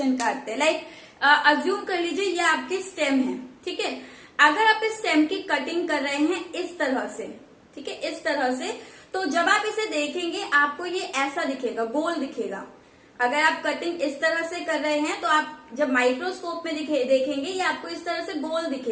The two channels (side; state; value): both; identical; correlation 1.00